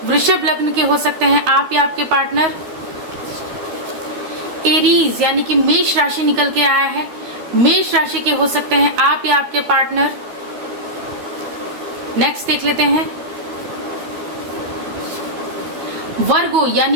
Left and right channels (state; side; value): late; left; 13 ms